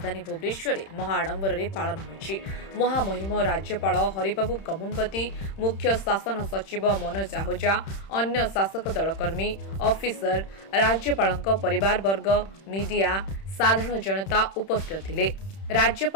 भुवनेश्वर में महाआडंबर पालन होइछि। महामहिम राज्यपाल हरिबाबू कमुनपति, मुख्य शासन सचिव मनोज आहूजा, अन्य शासक दल कर्मी, ऑफिसर, राज्यपाल परिवार वर्ग, मीडिया, साधारण जनता उपस्थित थिले।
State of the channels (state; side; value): late; right; 31 ms